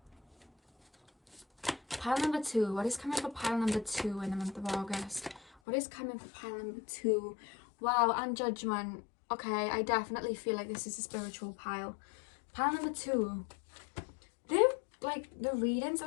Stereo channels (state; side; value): drops out; right; at 5.5 s